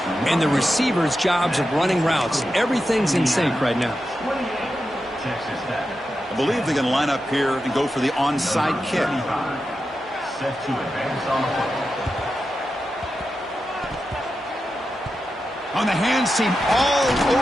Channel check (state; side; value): normal; both; correlation 0.90